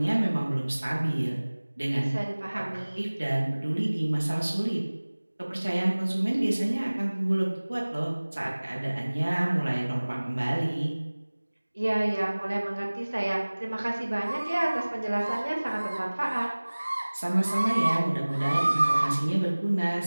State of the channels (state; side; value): inverted; both; correlation -1.00